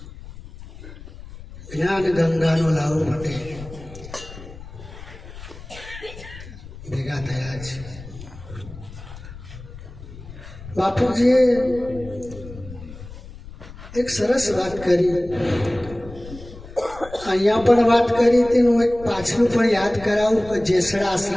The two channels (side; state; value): left; noise; rumble, 15 dB below the sound